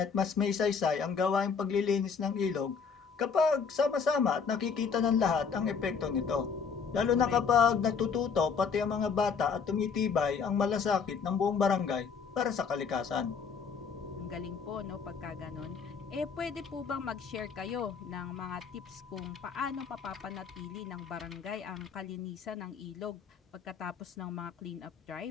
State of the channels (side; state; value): right; quieter; 5.9 dB